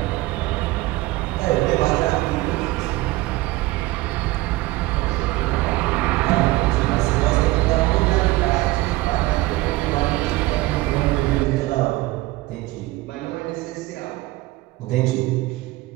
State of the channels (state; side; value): quieter; left; 19.4 dB